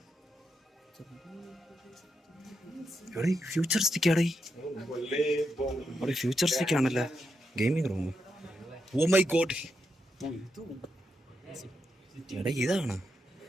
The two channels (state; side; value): normal; both; correlation 0.84